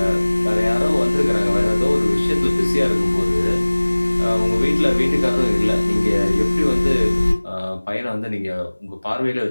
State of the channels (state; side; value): inverted; both; correlation -1.00